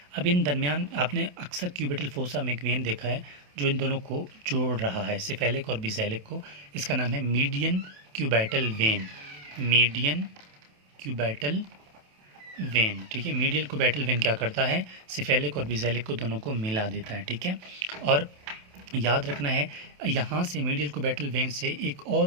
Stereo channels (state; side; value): late; left; 28 ms